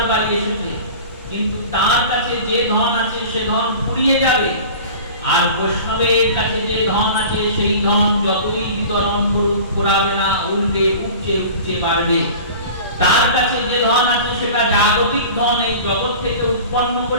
বাড়ি এসেছে, কিন্তু তার কাছে যে ধন আছে সে ধন ফুরিয়ে যাবে। আর বৈষ্ণবের কাছে যে ধন আছে সেই ধন যতই বিতরণ করুক ফুরাবে না, উল্টে উপচে উপচে বাড়বে। তার কাছে যে ধন আছে সেটা জাগতিক ধন, এই জগৎ থেকে উৎপন্ন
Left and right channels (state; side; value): inverted; both; correlation -0.39